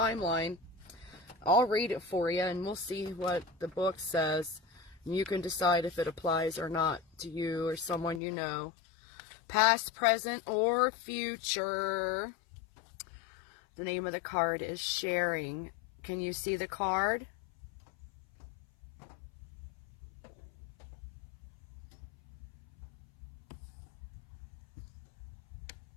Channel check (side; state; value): right; drops out; at 8.2 s